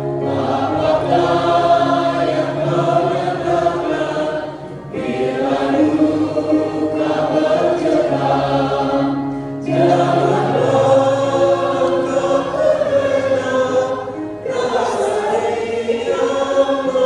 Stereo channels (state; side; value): identical; both; correlation 1.00